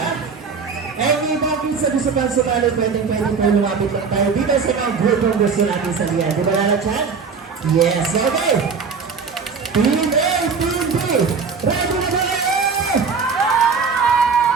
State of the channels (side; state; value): left; quieter; 5.4 dB